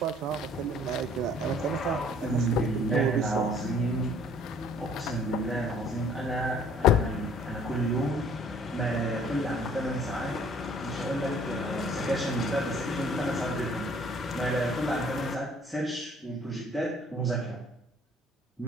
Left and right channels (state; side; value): normal; both; correlation 0.56